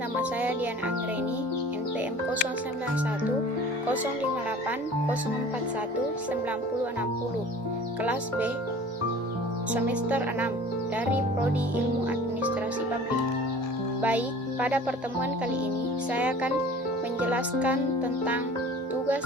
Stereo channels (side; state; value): both; normal; correlation 0.44